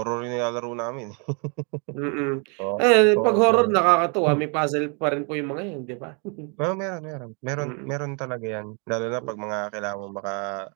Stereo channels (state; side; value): quieter; left; 36.7 dB